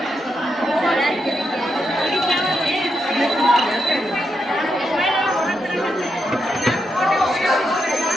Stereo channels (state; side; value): normal; both; correlation 0.83